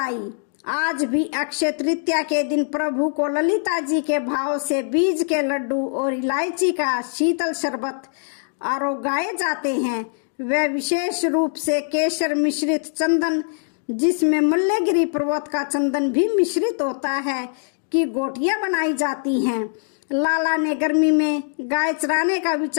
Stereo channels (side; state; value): right; silent; digital silence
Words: आज भी अक्षय तृतीया के दिन प्रभु को ललिता जी के भाव से बीज के लड्डू और इलायची का शीतल शरबत आरोगाए जाते हैं। वह विशेष रूप से केसर मिश्रित चंदन, जिसमें मल्लगिरी पर्वत का चंदन भी मिश्रित होता है, की गोटियां बनाई जाती हैं। लाला ने गर्मी में गाय चराने का